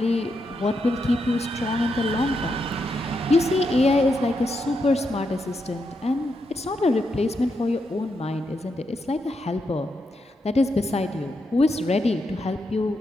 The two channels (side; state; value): both; normal; correlation 0.83